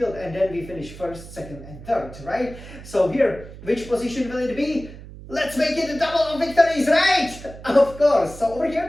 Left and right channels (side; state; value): right; noise; hum, 15 dB below the sound